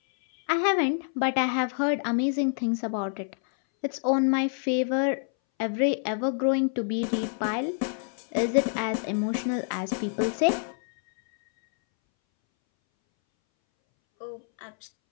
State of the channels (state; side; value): silent; right; 60 dB below the other